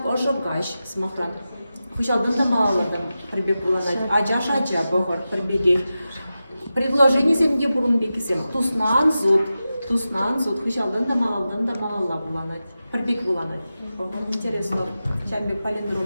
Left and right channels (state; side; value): inverted; both; correlation -0.92